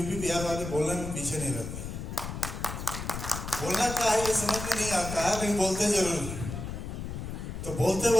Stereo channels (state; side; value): noise; left; rumble, 7 dB below the sound